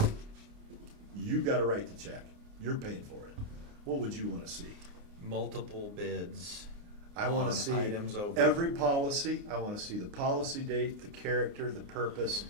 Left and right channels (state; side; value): late; left; 29 ms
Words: you got a right to check. You're paying for it. What would you want to see? Multiple bids. I want on to see items over. every policy. I want to see the policy date, the character, the purpose,